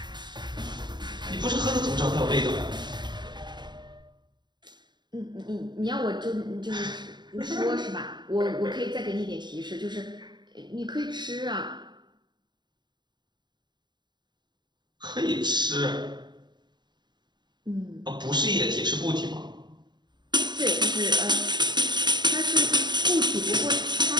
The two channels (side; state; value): left; late; 0.21 ms